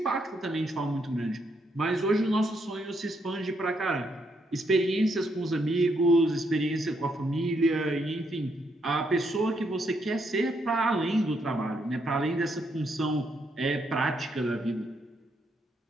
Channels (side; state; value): both; normal; correlation 0.76